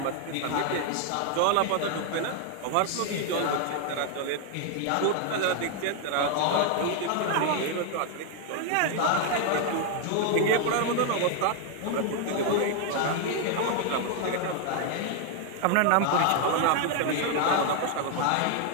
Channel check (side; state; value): both; different; correlation 0.01